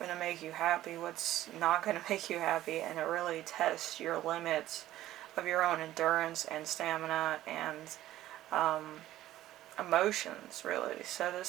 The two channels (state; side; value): quieter; left; 14.3 dB